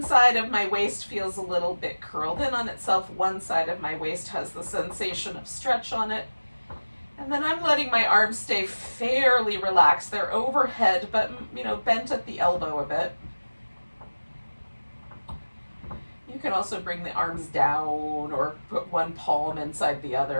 side of my waist feels a little bit curled in on itself. One side of my waist has the sensation of stretch on it. And then I'm letting my arms stay fairly relaxed. They're overhead, but, bent at the elbow a bit. You can also bring the arms down or put one palm inside the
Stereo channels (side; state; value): both; inverted; correlation -1.00